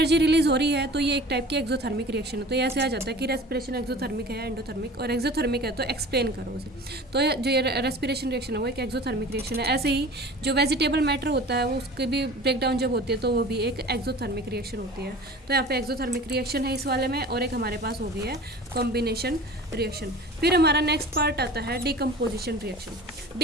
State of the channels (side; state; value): both; normal; correlation 0.41